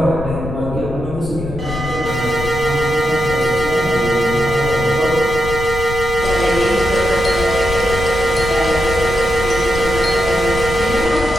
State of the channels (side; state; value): left; noise; rumble, 9 dB below the sound